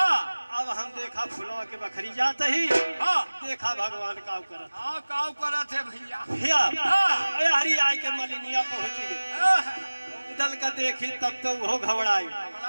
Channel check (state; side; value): inverted; both; correlation -1.00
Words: अब हम देखा फुलवा के बखरी जाते ही देखा भगवान काव करत। काव करत है भैया। भैया यारी आए के मलिनिया पहुंच गई। उदल का देखी तब तो वो घबराई